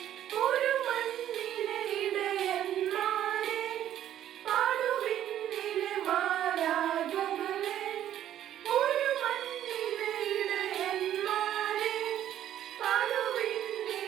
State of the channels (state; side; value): quieter; left; 11.5 dB